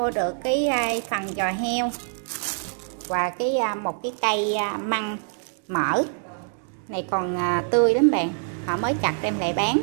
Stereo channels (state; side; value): silent; left; 62 dB below the other